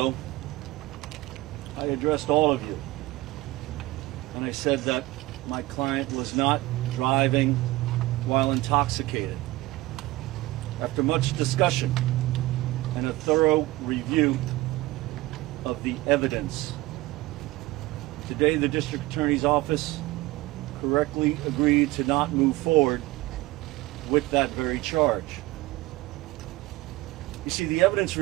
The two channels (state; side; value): quieter; left; 19.1 dB